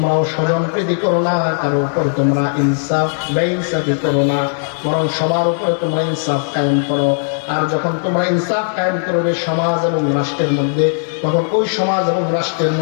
স্বজনপ্রীতি করো না, কারো উপর তোমরা ইনসাফ বেইনসাফি করো না, বরং সবার উপরে তোমরা ইনসাফ কায়েম করো। আর যখন তোমরা ইনসাফ কায়েম করবে সমাজ এবং রাষ্ট্রের মধ্যে, তখন ওই সমাজ এবং রাষ্ট্রের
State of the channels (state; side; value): silent; right; 68 dB below the other